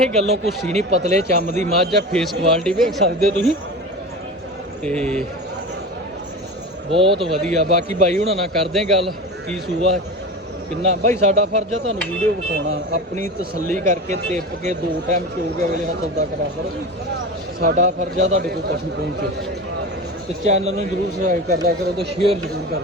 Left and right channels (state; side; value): normal; both; correlation 0.29